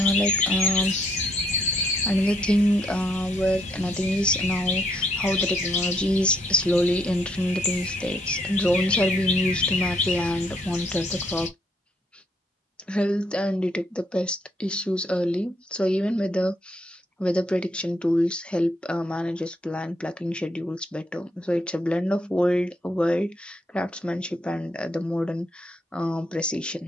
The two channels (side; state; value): both; normal; correlation 0.72